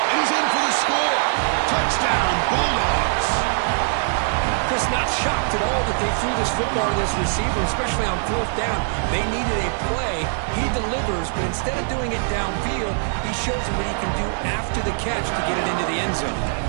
And he's in for the score. Touchdown, Bulldogs. Chris, not shocked at all that they threw this football to this receiver, especially on fourth down. They needed a play. He delivers, but instead of doing it downfield, he shows them what he can do after the catch to get it into the end zone.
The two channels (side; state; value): left; silent; digital silence